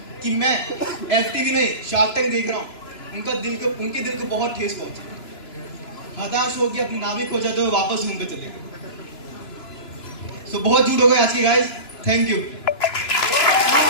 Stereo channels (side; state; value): right; late; 3.0 ms